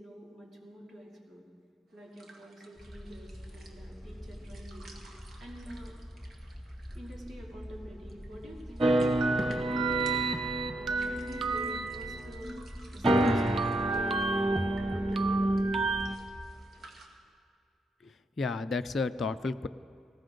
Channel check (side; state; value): both; normal; correlation 0.78